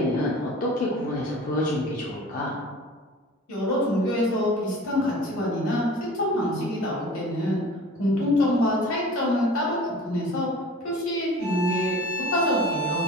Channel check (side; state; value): both; normal; correlation 0.41